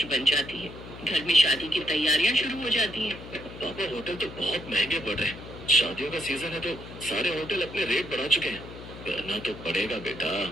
बन जाती है। घर में शादी की तैयारियां शुरू हो जाती हैं। पापा, होटल तो बहुत महंगे पड़ रहे हैं। शादियों का सीजन है, तो सारे होटल अपने रेट बढ़ा चुके हैं। करना तो पड़ेगा बेटा,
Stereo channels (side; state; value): left; noise; hum, 14 dB below the sound